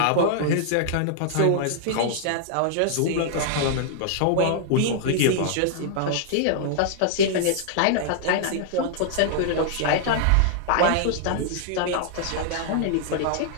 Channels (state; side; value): different; both; correlation -0.01